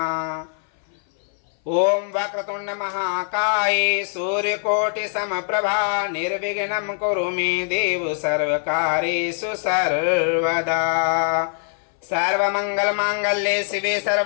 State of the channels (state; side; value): silent; right; 59 dB below the other